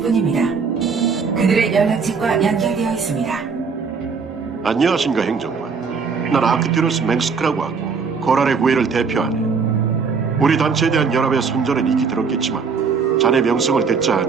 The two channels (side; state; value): left; quieter; 5.4 dB